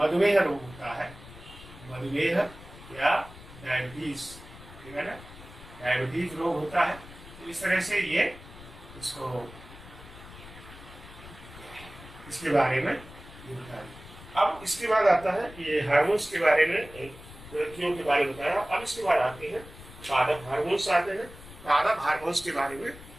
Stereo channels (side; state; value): left; noise; rumble, 17 dB below the sound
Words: रोग होता है, मधुमेह या डायबिटीज, ठीक है ना, डायबिटीज रोग होता है। तो इस तरह से ये इसको इसके बारे में ये बताया। अब इसके बाद आता है ये हार्मोन्स के बारे में, ग्रंथियों के बारे में बताया। अब इसके बाद आते हैं पादप हार्मोन्स आते हैं। पादप हार्मोन्स के बारे में